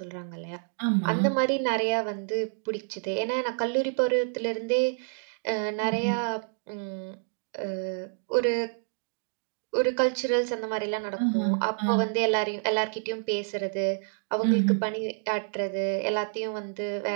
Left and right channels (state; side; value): silent; left; digital silence